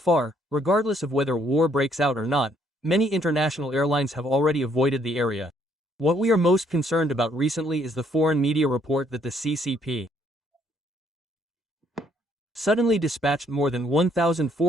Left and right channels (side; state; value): both; normal; correlation 0.68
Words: regardless of whether war breaks out or not, many international airlines have already avoided the area. What we are most concerned about recently is the foreign media report that the CCP suddenly dispatched more than